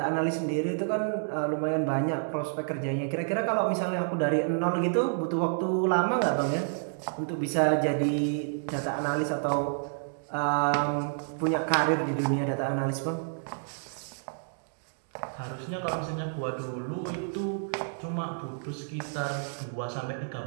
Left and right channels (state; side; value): silent; left; digital silence